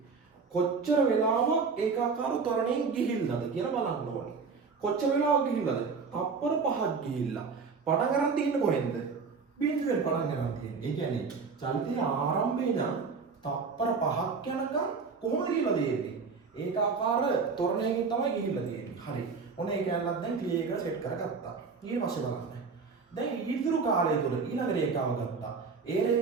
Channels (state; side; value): quieter; left; 5.0 dB